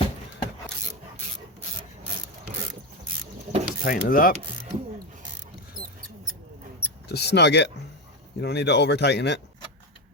Just tighten it up. Just snug it. You don't need to over tighten it.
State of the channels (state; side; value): normal; both; correlation 0.12